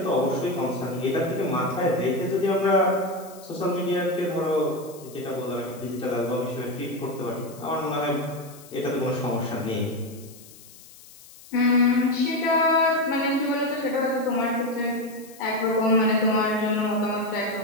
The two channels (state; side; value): noise; left; hiss, 21 dB below the sound